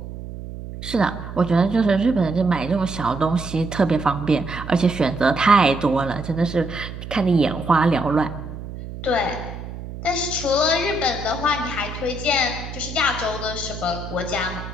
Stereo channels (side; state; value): right; noise; hum, 10 dB below the sound